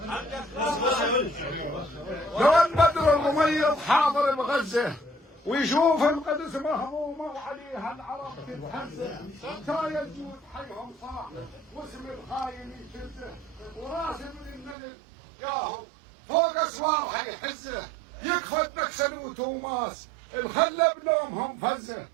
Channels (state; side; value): drops out; left; at 14.8 s